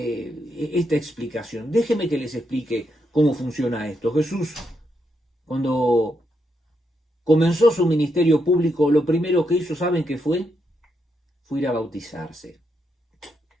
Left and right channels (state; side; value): normal; both; correlation 0.80